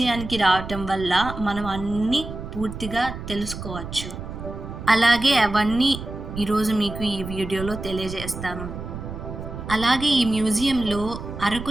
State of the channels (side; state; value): right; noise; rumble, 9 dB below the sound